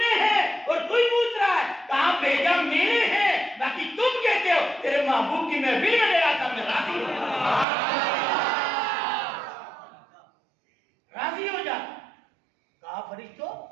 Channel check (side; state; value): left; drops out; at 7.7 s